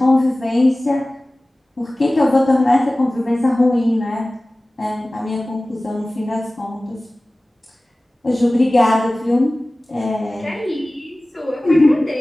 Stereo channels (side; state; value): both; normal; correlation 0.98